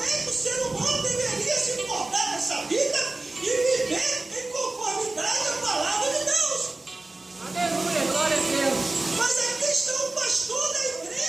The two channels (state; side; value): quieter; left; 3.1 dB